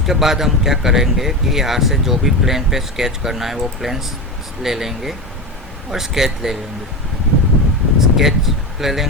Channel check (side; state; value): both; normal; correlation 0.21